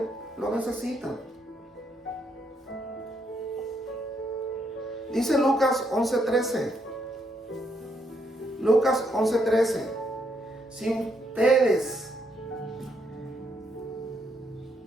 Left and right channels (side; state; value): both; normal; correlation 0.75